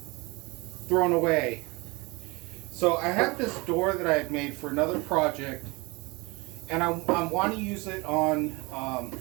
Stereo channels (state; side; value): quieter; left; 25.9 dB